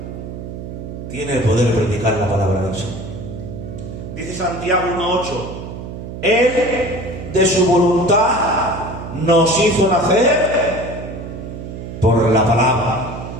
Tiene el poder de predicar la palabra del Señor. Dice Santiago 1:8, Él de su voluntad nos hizo nacer por la palabra.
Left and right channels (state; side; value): noise; right; hum, 9 dB below the sound